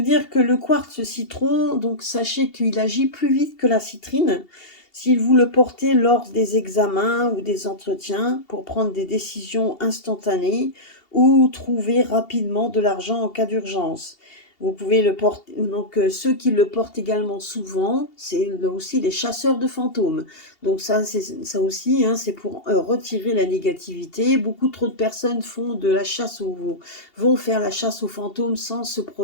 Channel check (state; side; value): late; right; 2.8 ms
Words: dire que le quartz citron, donc sachez qu'il agit plus vite que la citrine. Si vous le portez lors des examens ou des entretiens pour prendre des décisions instantanées ou trouver rapidement de l'argent en cas d'urgence. Vous pouvez le porter, donc ceux qui le portent également souvent, c'est aussi les chasseurs de fantômes. Donc ça aussi, hein, c'est pour retirer la négativité. Beaucoup trop de personnes font de la chasse vont faire la chasse aux fantômes sans se